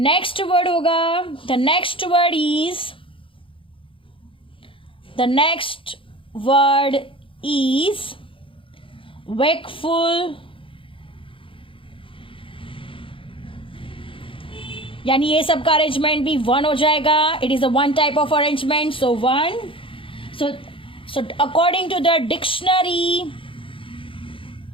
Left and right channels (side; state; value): right; late; 0.25 ms